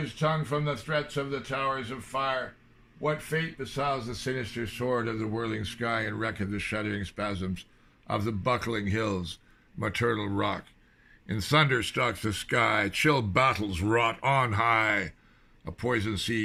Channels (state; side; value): identical; both; correlation 1.00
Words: tongue from the threats of the towers of fire? What fate besows the sinister sword of the whirling sky and wreck of the shuddering spasms of the buckling hills, maternal rock? In thunder stalks the sky, chill battles wrought on high. A poison